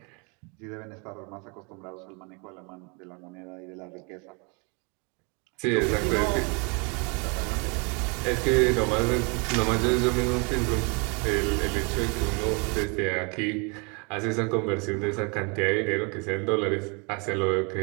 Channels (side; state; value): left; quieter; 32.6 dB